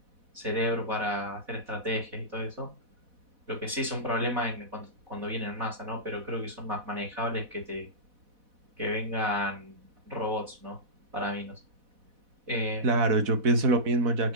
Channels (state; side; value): late; left; 4.1 ms